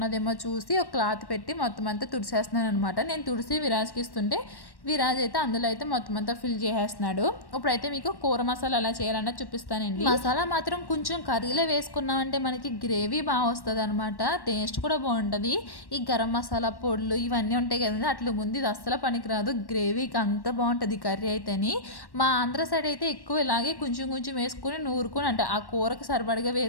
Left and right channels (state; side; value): late; right; 1.1 ms